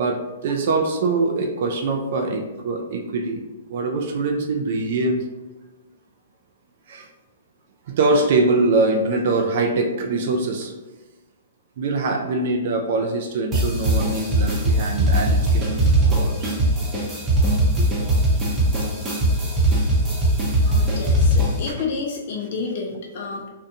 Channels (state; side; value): normal; both; correlation -0.15